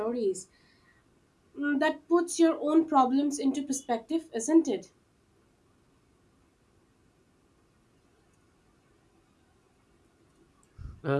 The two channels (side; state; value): both; identical; correlation 1.00